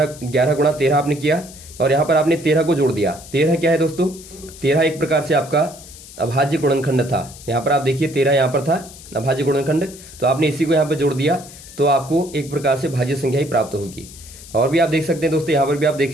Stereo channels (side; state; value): left; noise; hiss, 18 dB below the sound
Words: 11 गुणा 13 आपने किया, और यहाँ पर आपने 13 को जोड़ दिया। 13 क्या है दोस्तों, 13 एक प्रकार से आपका अभाज्य गुणनखंड था। यहाँ पर आप देखिए 13 यहाँ पर था अभाज्य गुणनखंड, तो आपने इसी को यहाँ पर जोड़ दिया, तो आपको एक प्रकार से भाज्य संख्या ही प्राप्त होगी। और भी आप देख सकते हैं दोस्तों, यहाँ पर भी आप